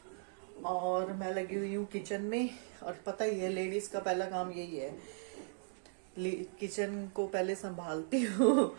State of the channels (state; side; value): silent; left; digital silence